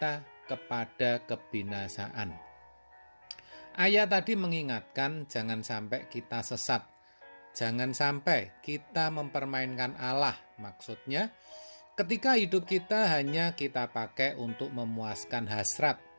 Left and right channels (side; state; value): both; inverted; correlation -1.00